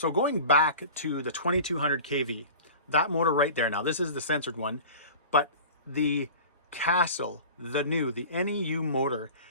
going back to the 2200 kV, that motor right there, now this is the censored one, but the Castle, the NEU motor,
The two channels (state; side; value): inverted; both; correlation -0.38